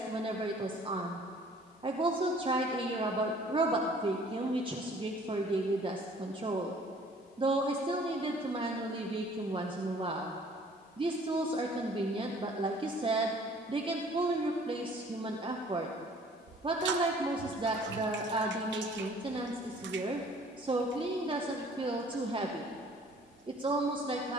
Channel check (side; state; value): both; normal; correlation 0.54